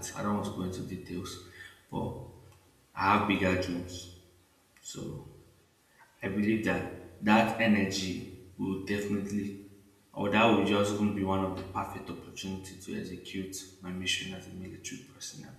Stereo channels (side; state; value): both; identical; correlation 1.00